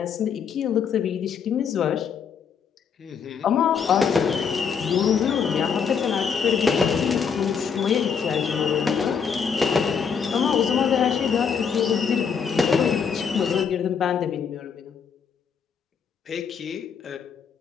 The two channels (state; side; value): quieter; right; 6.7 dB